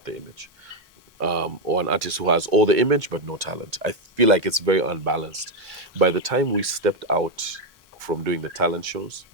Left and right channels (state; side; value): normal; both; correlation 0.05